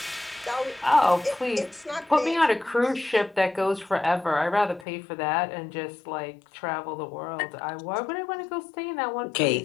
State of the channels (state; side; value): drops out; right; at 4.9 s